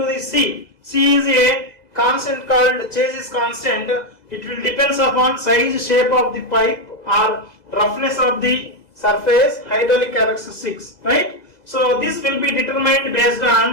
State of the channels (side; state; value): right; late; 2.0 ms